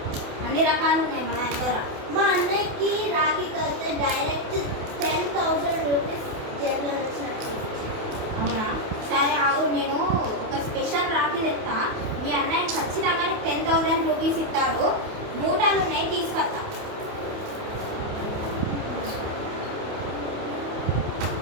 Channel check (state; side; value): late; left; 28 ms